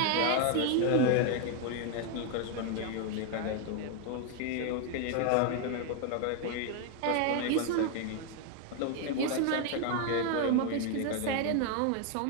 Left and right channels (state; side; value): different; both; correlation 0.01